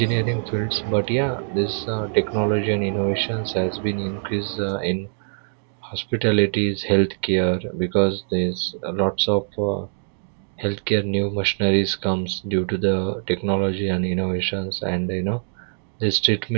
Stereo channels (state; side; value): silent; left; digital silence